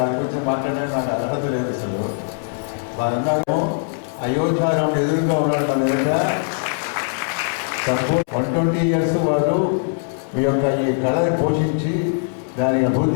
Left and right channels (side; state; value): right; silent; digital silence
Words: గురించి మాట్లాడడానికి నాకు అర్హత లేదు అసలు. వారన్నారేమో అయోధ్యారాముడు ఎదురుగా ఉన్నాడు మన ఎదుట. సంపూర్ణ 120 years వారు ఈ యొక్క ఈ కళని పోషించి దానికి